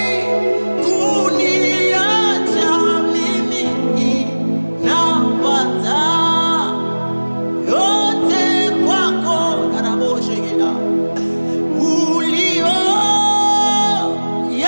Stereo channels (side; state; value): both; inverted; correlation -1.00